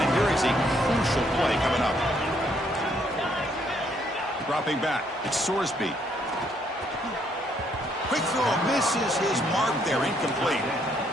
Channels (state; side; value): normal; both; correlation 0.70